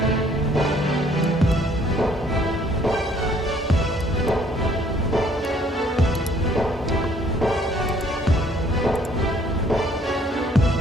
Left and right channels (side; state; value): both; normal; correlation 0.60